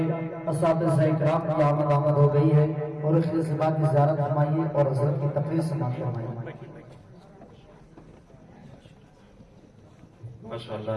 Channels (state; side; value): identical; both; correlation 1.00